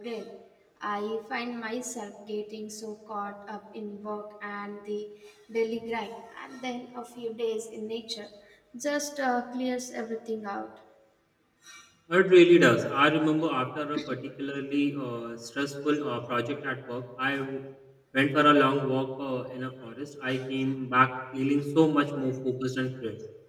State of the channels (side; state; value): both; identical; correlation 1.00